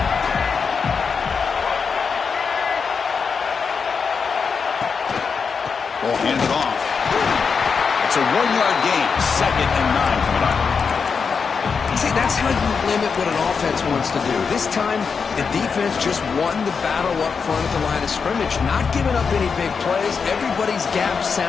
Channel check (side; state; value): right; quieter; 5.6 dB